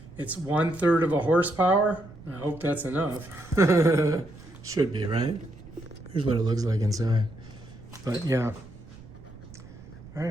It's 1/3 of a horsepower. I hope that's enough. Should be, right? Here's what it looks like inside. But yeah. All right,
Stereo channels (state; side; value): noise; right; rumble, 19 dB below the sound